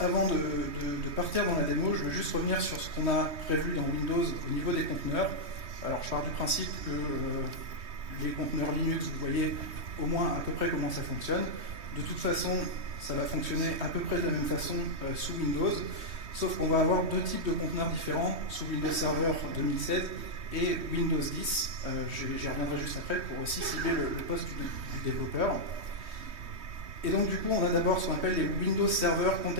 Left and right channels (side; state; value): left; late; 3.2 ms